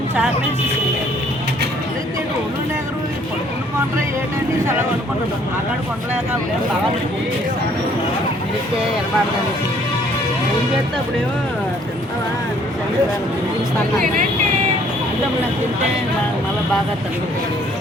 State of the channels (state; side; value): normal; both; correlation 0.61